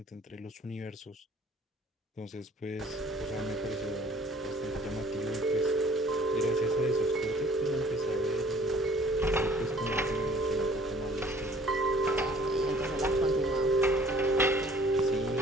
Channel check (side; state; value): both; normal; correlation 0.54